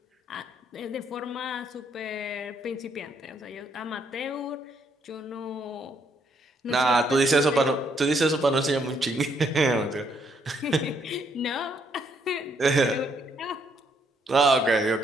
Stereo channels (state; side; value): normal; both; correlation 0.71